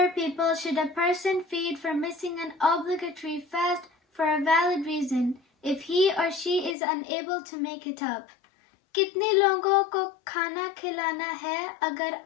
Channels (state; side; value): drops out; right; at 6.8 s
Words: people should a person feed for missing an obligatory fast for a valid reason if he or she is unable to make it up? कितने लोगों को खाना खिलाना है अगर